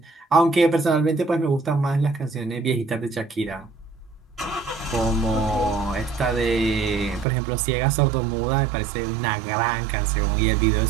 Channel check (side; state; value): left; drops out; at 7.2 s